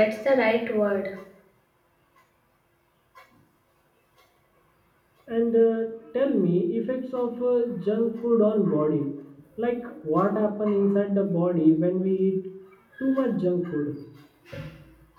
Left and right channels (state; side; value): identical; both; correlation 1.00